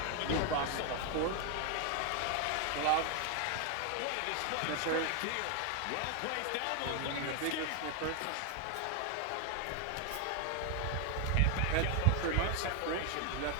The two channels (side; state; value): both; different; correlation 0.01